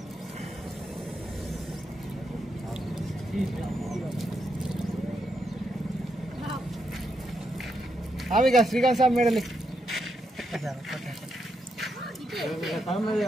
ఆమెగా శ్రీకాంత్ సాబ్ మేడలి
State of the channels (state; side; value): normal; both; correlation 0.81